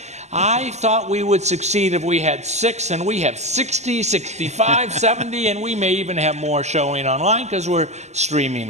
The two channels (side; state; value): left; late; 0.33 ms